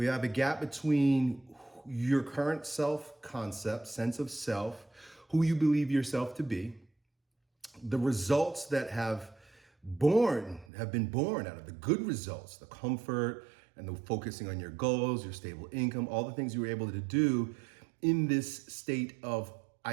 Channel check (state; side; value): drops out; left; at 10.7 s